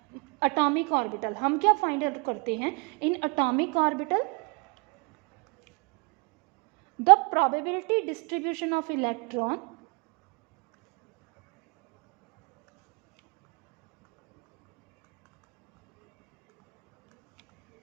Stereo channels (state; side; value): quieter; left; 31.6 dB